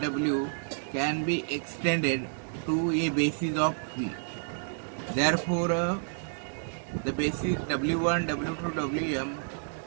W can be extended to a basis of P. Therefore, the basis W1, W2, Wm,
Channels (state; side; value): silent; left; digital silence